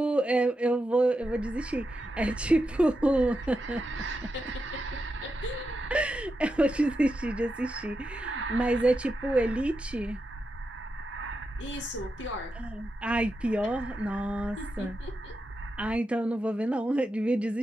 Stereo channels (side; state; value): both; normal; correlation 0.87